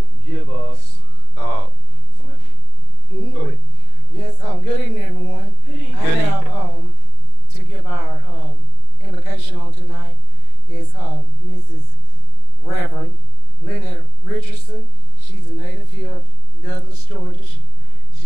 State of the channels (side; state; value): right; late; 40 ms